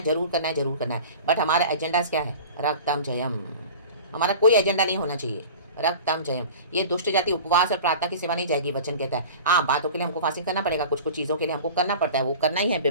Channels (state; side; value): inverted; both; correlation -0.38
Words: जरूर करना है, जरूर करना है, बट हमारा एजेंडाज क्या है? रक्तम जयम। हमारा कोई एजेंडा नहीं होना चाहिए। रक्तम जयम। ये दुष्ट जाति उपवास और प्रार्थना की सेवा नहीं जाएगी, वचन कहता है। हाँ, बातों के लिए हमको फास्टिंग करना पड़ेगा, कुछ कुछ चीज़ों के लिए हमको करना पड़ता है, वो करना ही है